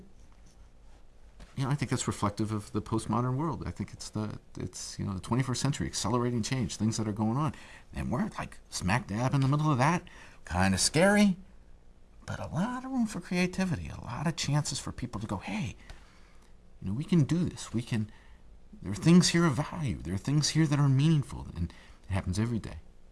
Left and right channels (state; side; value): identical; both; correlation 1.00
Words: I think that's reflective of the postmodern world. I think it's the 21st century, accelerating change, things that are going on. And we're like smack dab in the middle of that. Kind of scary, but a lot of room for creativity, a lot of chances for people to go, hey, we can do this. There are things here of value. There are things here that are meaningful. And it happens every day.